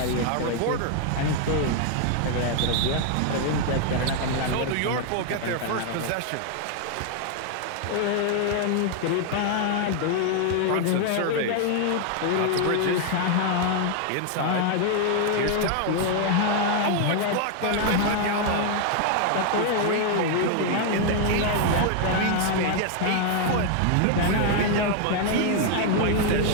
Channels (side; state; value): both; different; correlation 0.00